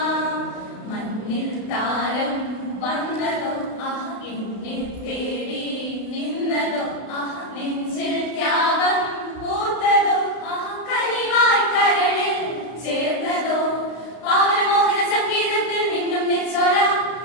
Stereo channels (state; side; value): late; right; 32 ms